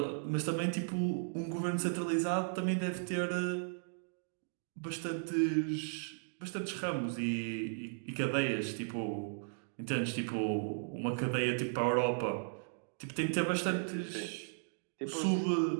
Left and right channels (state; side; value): silent; left; digital silence